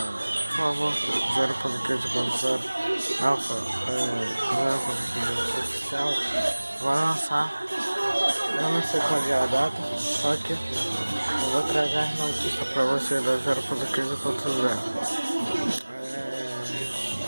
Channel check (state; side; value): inverted; both; correlation -1.00